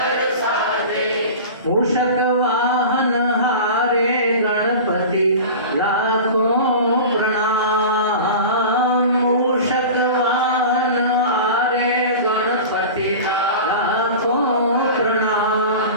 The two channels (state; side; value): inverted; both; correlation -0.33